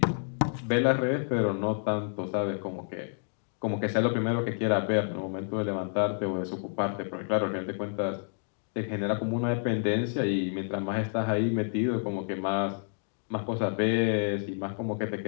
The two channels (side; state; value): right; silent; digital silence